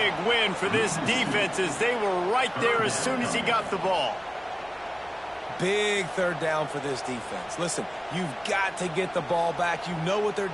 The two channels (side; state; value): right; noise; rumble, 29 dB below the sound